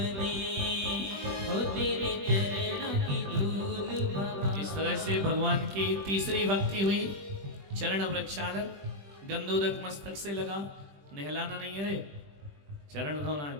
हो तेरे चरणों की धूल बाबा। इस तरह से भगवान की तीसरी भक्ति हुई। चरण प्रक्षालन, गंधोदक मस्तक से लगा, नहलाना नहीं है रे, चरण धोना है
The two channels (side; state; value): left; late; 20 ms